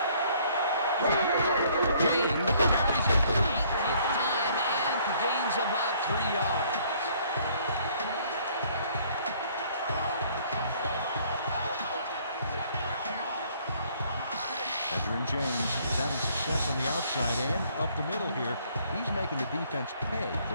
James carries it for the 18th time and gains about 3 yards. Edgerrin James is having success on the outside and up the middle here. He's making the defense pay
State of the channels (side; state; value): both; inverted; correlation -0.61